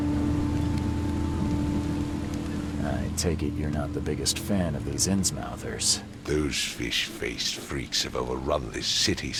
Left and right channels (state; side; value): identical; both; correlation 1.00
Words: I take it you're not the biggest fan of these Innsmouthers. Those fish-faced freaks have overrun this city